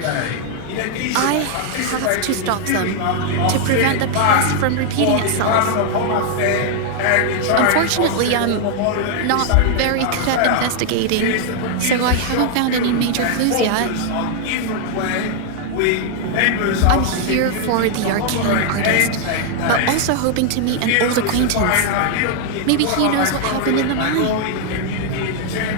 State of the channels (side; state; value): both; different; correlation 0.00